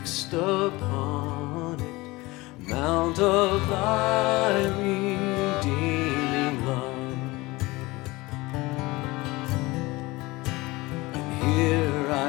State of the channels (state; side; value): quieter; right; 21.7 dB